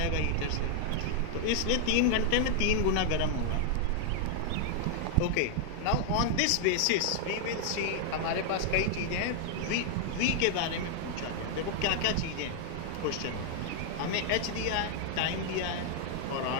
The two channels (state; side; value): different; both; correlation 0.00